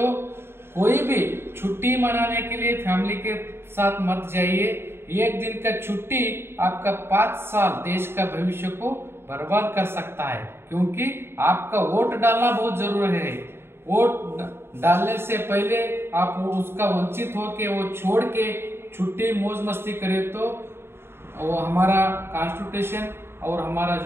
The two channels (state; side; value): late; left; 0.11 ms